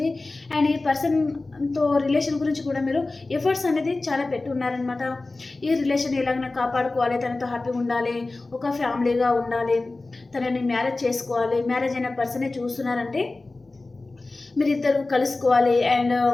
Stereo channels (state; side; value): quieter; right; 3.3 dB